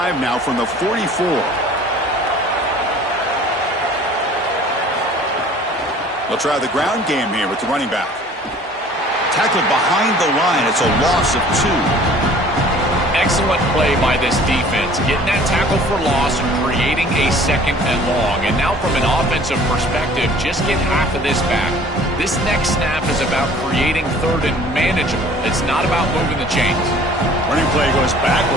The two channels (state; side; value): normal; both; correlation 0.50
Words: now from the 44. They'll try the ground game here with the running back. Tackled behind the line. It's a loss of 2. Excellent play by this defense, getting that tackle for loss and creating a 2nd and long. And now from an offensive perspective, just get half of this back. This next snap is about creating 3rd and manageable. It's not about moving the chains. Running play goes